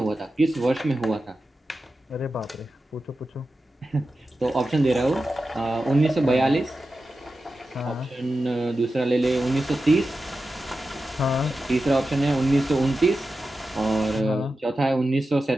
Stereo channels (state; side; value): normal; both; correlation 0.92